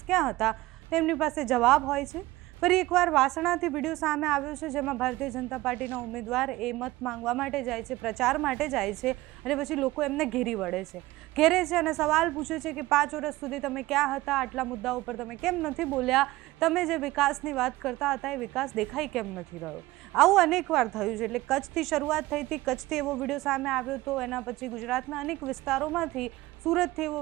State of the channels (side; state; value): left; quieter; 18.5 dB